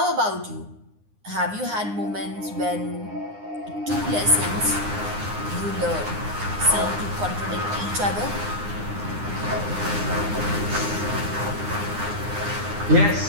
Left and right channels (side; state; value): left; late; 9.7 ms